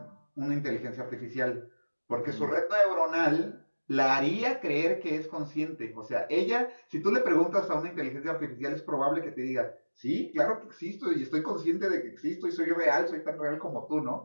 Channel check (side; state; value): both; inverted; correlation -1.00